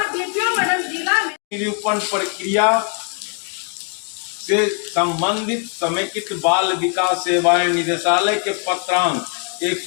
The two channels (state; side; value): quieter; right; 39.3 dB